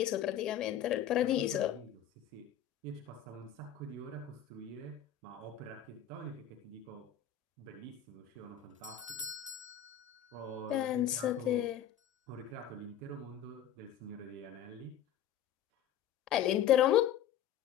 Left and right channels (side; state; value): right; quieter; 9.9 dB